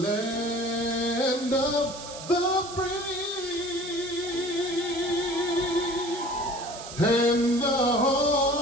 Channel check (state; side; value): noise; right; hiss, 12 dB below the sound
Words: of the free and the